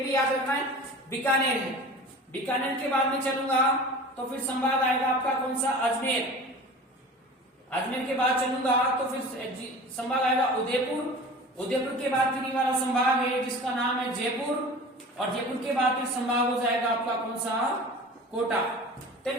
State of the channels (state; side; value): normal; both; correlation 0.38